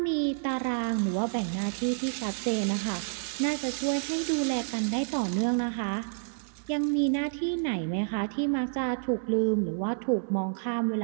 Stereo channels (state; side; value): silent; left; digital silence